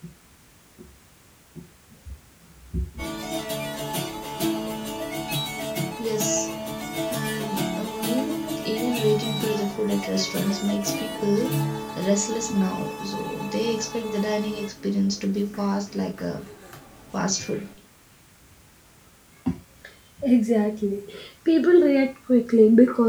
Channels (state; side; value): identical; both; correlation 1.00